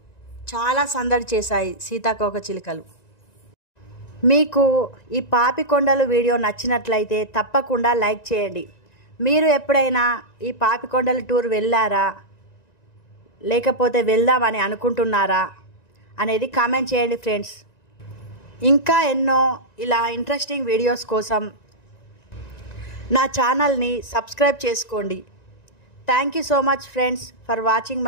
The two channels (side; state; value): right; late; 1.9 ms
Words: చాలా సందడి చేశాయి సీతాకోక చిలుకలు. మీకు ఈ పాపికొండలు వీడియో నచ్చినట్లయితే తప్పకుండా లైక్ చేయండి. మీరు ఎప్పుడైనా ఈ పాపికొండల టూర్ వెళ్ళారా, లేకపోతే వెళ్దామని అనుకుంటున్నారా అనేది కామెంట్ చేయండి ఫ్రెండ్స్. ఇంకా ఎన్నో ఇలా ఇంట్రెస్టింగ్ వీడియోస్ కోసం నా ఛానల్ని సబ్స్క్రైబ్ చేసుకోండి. Thank you so much friends for watching